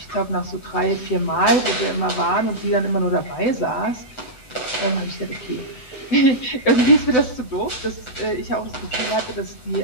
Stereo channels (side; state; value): right; late; 7.9 ms